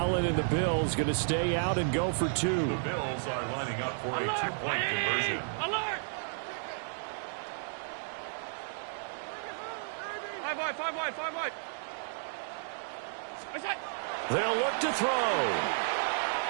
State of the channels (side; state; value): left; silent; digital silence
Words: and the Bills going to stay out and go for 2. The Bills are lining up for a 2-point conversion. Alert! 5 wide. They'll look to throw.